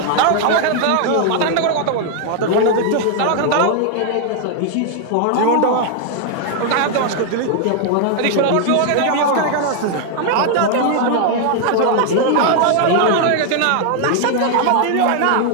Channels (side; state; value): both; different; correlation 0.00